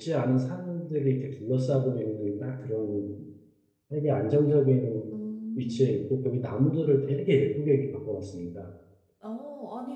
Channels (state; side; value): identical; both; correlation 1.00